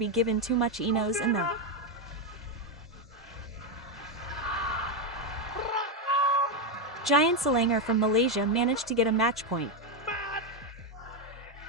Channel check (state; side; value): normal; both; correlation 0.06